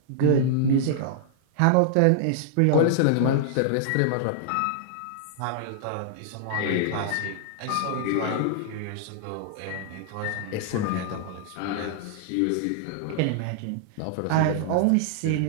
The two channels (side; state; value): both; different; correlation -0.01